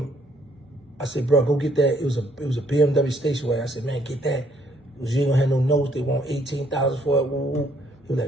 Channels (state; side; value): normal; both; correlation 0.66